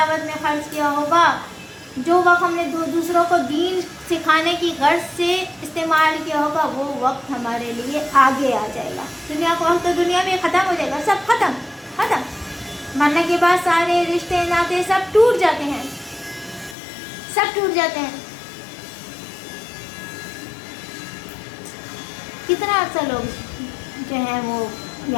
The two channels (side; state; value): right; drops out; at 16.8 s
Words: میں خرچ کیا ہوگا، جو وقت ہم نے دوسروں کو دین سکھانے کی غرض سے استعمال کیا ہوگا، وہ وقت ہمارے لیے آگے آ جائے گا. دنیا کا وقت تو دنیا میں ختم ہو جائے گا، سب ختم. مرنے کے بعد سارے رشتے ناطے سب ٹوٹ جاتے ہیں، سب ٹوٹ جاتے ہیں. کتنا عرصہ لوگ جو ہیں وہ